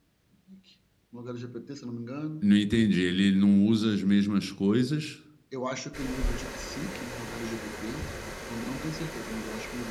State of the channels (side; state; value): both; identical; correlation 1.00